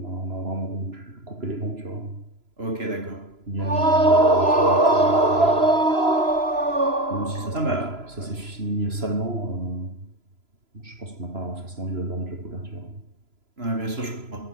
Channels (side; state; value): left; late; 3.0 ms